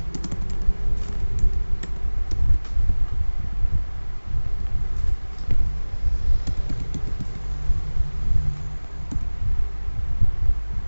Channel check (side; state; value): both; inverted; correlation -1.00